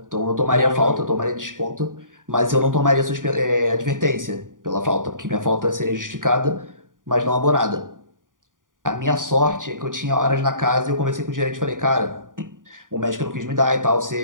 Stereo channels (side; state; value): left; late; 0.89 ms